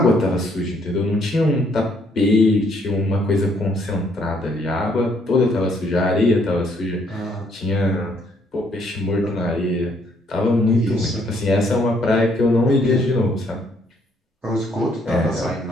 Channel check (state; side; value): normal; both; correlation 0.68